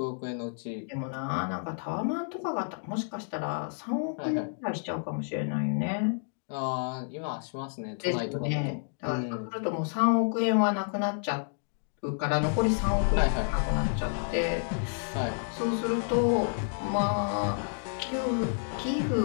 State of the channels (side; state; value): right; silent; digital silence